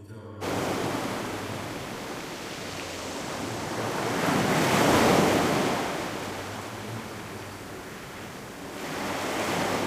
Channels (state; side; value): identical; both; correlation 1.00